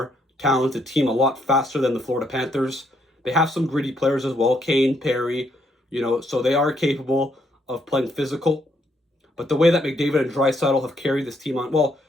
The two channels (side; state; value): both; normal; correlation 0.73